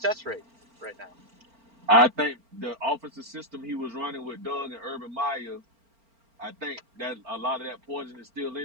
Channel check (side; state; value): left; late; 4.4 ms